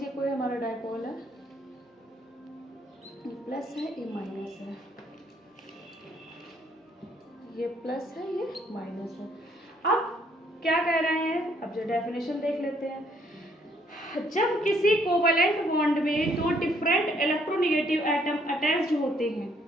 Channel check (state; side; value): normal; both; correlation 0.67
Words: कोई हमारा डायपोल है, ये प्लस है, ये माइनस है, ये प्लस है, ये माइनस है। अब क्या कह रहे हैं? अब जो डेफिनेशन देख लेते हैं। जब किसी कोवैलेंट बॉन्ड में 2 डिफरेंट इलेक्ट्रोनेगेटिव एटम अटैच्ड होते हैं,